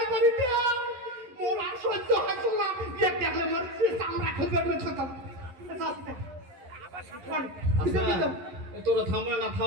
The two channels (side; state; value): left; late; 11 ms